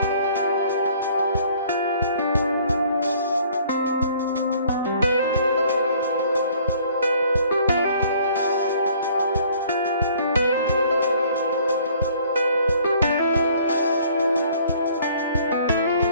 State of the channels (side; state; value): both; inverted; correlation -0.57